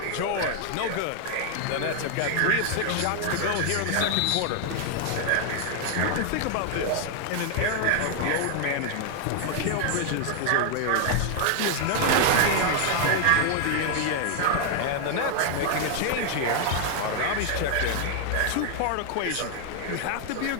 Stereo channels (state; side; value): different; both; correlation 0.00